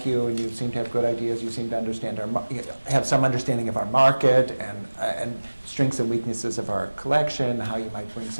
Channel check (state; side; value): inverted; both; correlation -1.00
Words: you, and you seem to have good ideas, you seem to understand have some understanding of our market and strengths and weaknesses of our collection, how you might bring